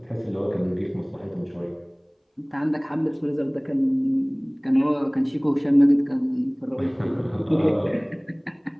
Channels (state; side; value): identical; both; correlation 1.00